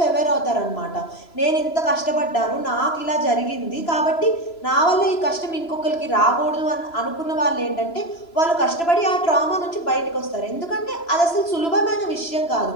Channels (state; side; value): late; right; 3.0 ms